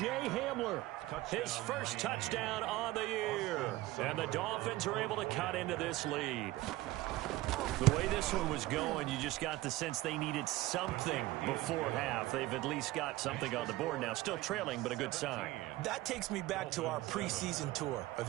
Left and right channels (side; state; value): left; quieter; 17.7 dB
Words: Hamler, his first touchdown on the year. And the Dolphins are able to cut into this lead. The way this one was going, you just got the sense they needed something before half. They've at least got something on the board now. Still trailing, but a good sign. That takes me back to our preseason tour of